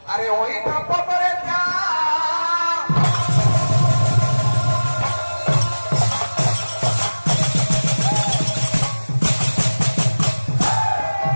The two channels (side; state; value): both; inverted; correlation -1.00